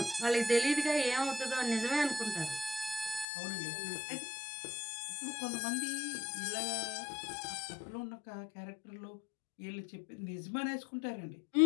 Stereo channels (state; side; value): drops out; right; at 3.2 s